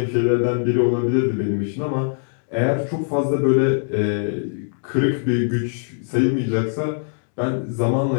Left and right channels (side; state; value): right; silent; digital silence